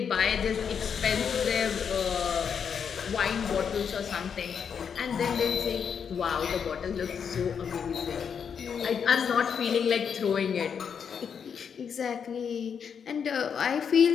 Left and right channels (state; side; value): quieter; right; 7.1 dB